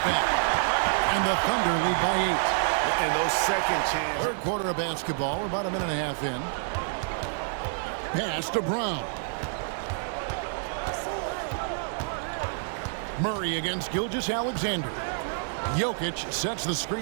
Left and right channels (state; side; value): silent; left; digital silence